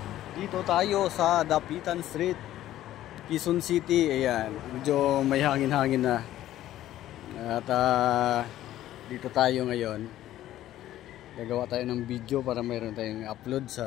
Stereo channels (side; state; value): right; quieter; 13.5 dB